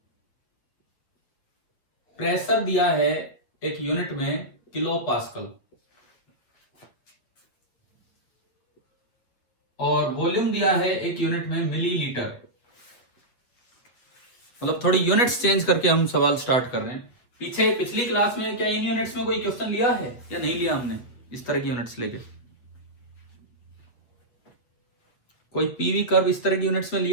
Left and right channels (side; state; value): right; late; 8.2 ms